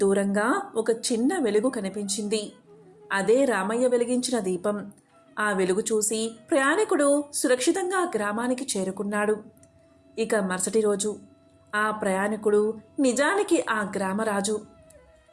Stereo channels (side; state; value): both; identical; correlation 1.00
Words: దూరంగా ఒక చిన్న వెలుగు కనిపించింది. అదే రామయ్య వెలిగించిన దీపం. ఆ వెలుగు చూసి ప్రయాణికుడు సురక్షితంగా గ్రామానికి చేరుకున్నాడు. ఇక మరుసటి రోజు ఆ ప్రయాణికుడు నిజానికి ఆ గ్రామరాజు.